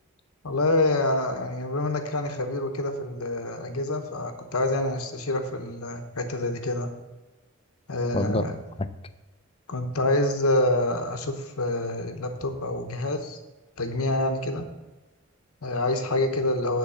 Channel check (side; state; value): both; normal; correlation -0.19